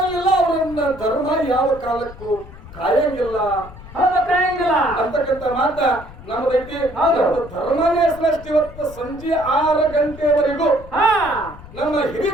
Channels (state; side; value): noise; left; rumble, 17 dB below the sound